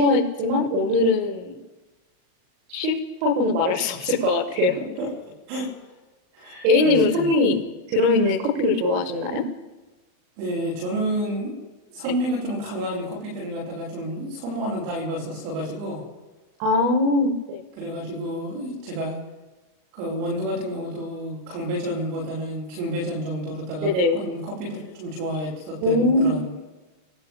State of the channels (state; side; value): late; left; 39 ms